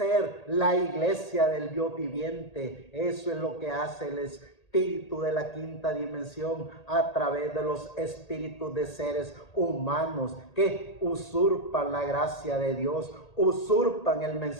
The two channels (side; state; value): right; late; 1.8 ms